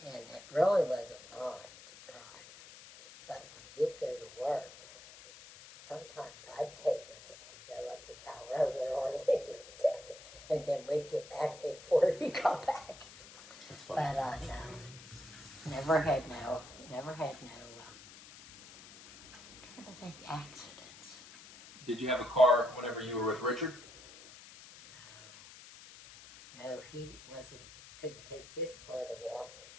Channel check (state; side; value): noise; left; hiss, 18 dB below the sound